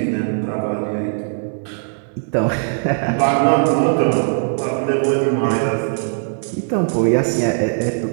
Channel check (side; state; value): left; silent; digital silence